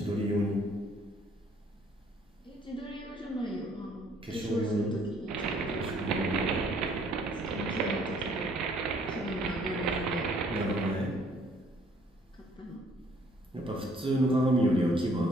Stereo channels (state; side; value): normal; both; correlation 0.62